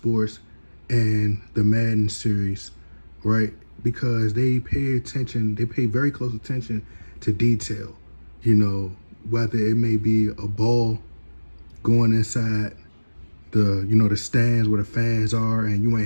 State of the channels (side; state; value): both; inverted; correlation -1.00